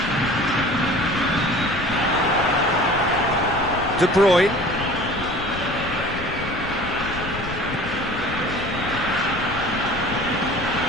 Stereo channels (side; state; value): left; noise; rumble, 11 dB below the sound